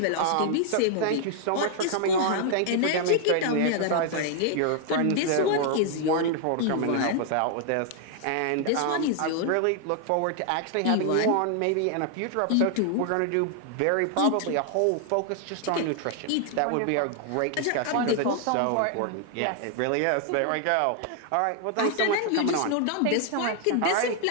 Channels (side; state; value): both; different; correlation 0.00